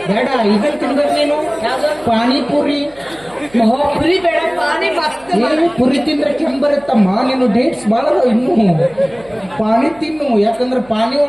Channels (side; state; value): right; noise; hum, 26 dB below the sound